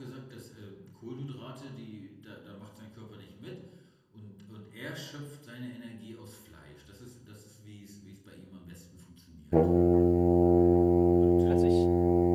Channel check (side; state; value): both; identical; correlation 1.00